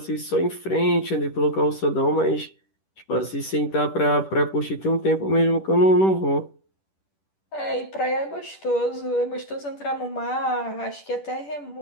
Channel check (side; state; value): right; late; 10 ms